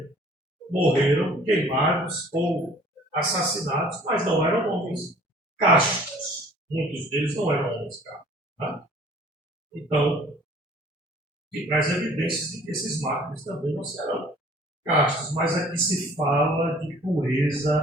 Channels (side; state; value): both; normal; correlation 0.52